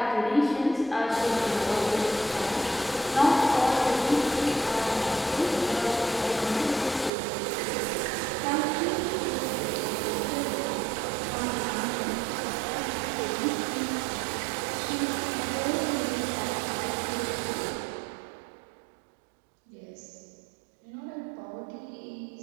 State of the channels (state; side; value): drops out; left; at 7.1 s